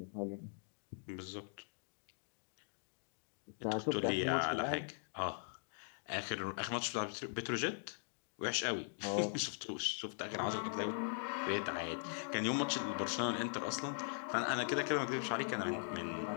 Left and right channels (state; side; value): silent; right; digital silence